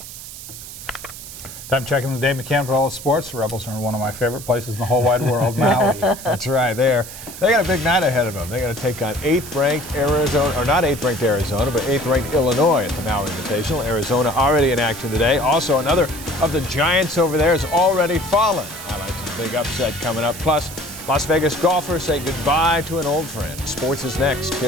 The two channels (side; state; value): right; noise; hiss, 13 dB below the sound